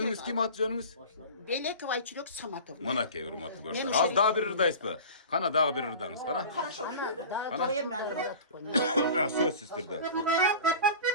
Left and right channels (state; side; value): inverted; both; correlation -0.37